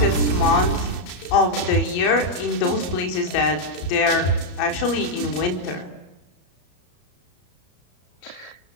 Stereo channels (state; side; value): late; right; 34 ms